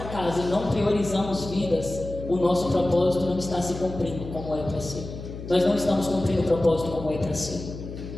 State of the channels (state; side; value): noise; left; hum, 10 dB below the sound